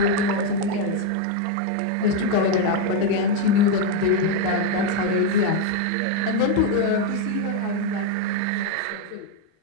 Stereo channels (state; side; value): different; both; correlation 0.02